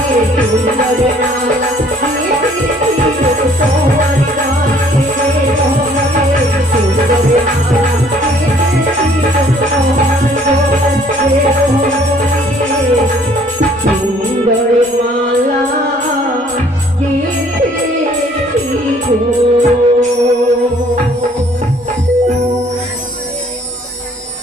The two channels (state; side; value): normal; both; correlation 0.59